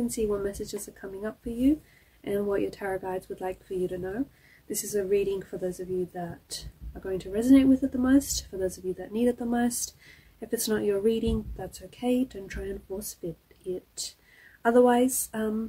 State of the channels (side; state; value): both; identical; correlation 1.00